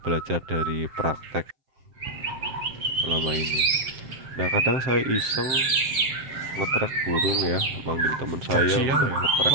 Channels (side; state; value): left; late; 7.6 ms